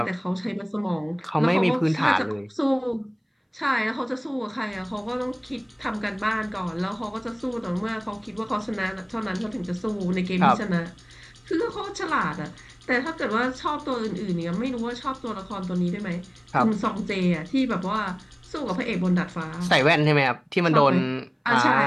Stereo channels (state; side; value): identical; both; correlation 1.00